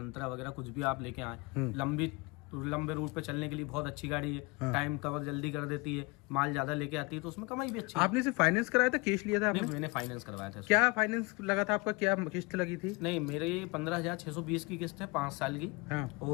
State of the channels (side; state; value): right; quieter; 26.9 dB